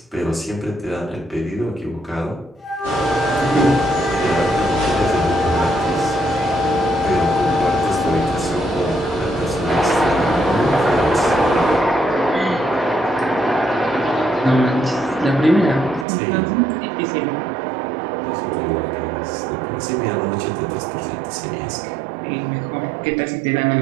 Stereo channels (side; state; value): left; drops out; at 16.1 s